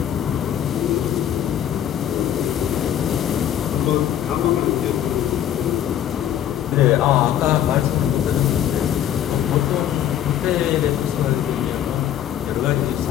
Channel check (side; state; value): right; quieter; 10.5 dB